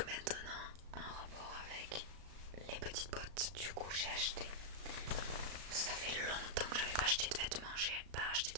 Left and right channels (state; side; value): late; left; 36 ms